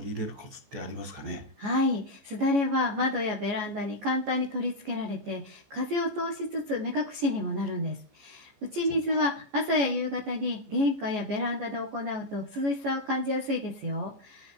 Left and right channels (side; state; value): left; late; 14 ms